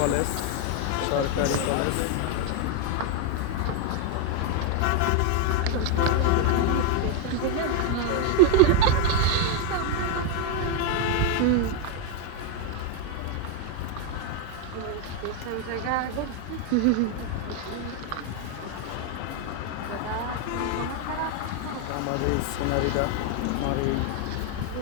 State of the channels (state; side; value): different; both; correlation 0.01